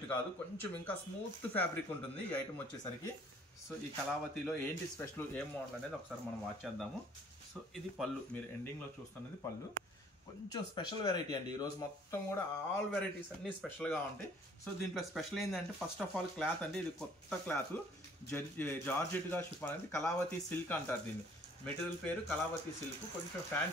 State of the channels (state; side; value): normal; both; correlation 0.57